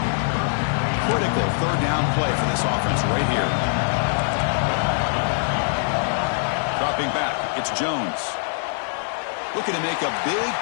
Critical third down play for this offense right here. Dropping back, it's Jones. Looking to make a big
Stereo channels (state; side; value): silent; right; digital silence